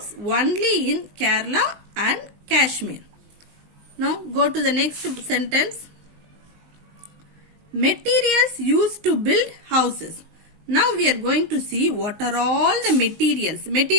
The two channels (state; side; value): late; left; 19 ms